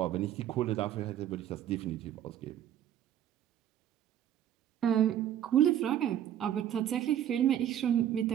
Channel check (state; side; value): quieter; left; 10.8 dB